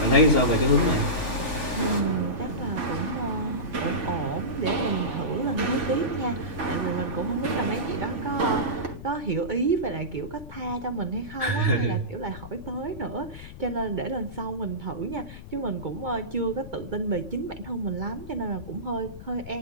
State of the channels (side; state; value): left; noise; rumble, 13 dB below the sound